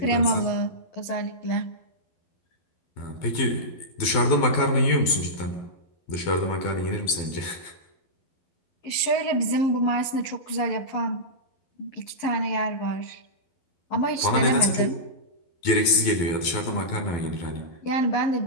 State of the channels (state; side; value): late; right; 12 ms